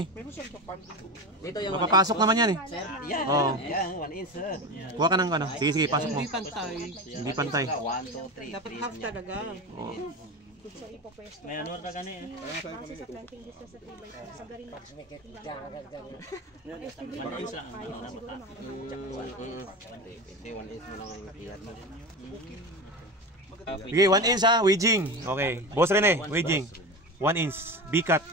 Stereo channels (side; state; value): both; normal; correlation 0.25